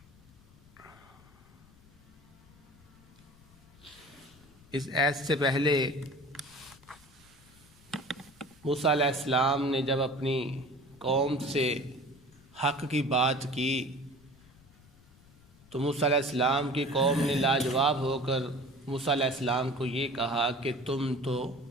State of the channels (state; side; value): noise; left; rumble, 26 dB below the sound